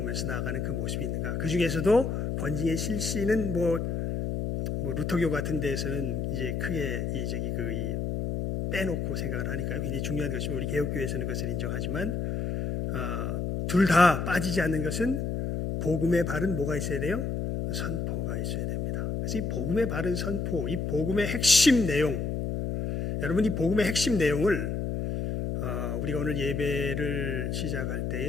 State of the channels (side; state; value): left; noise; hum, 1 dB below the sound